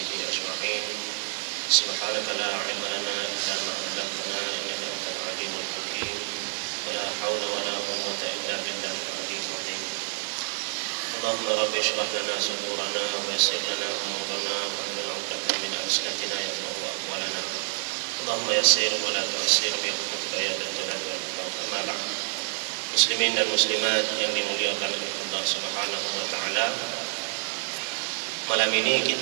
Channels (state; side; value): silent; left; digital silence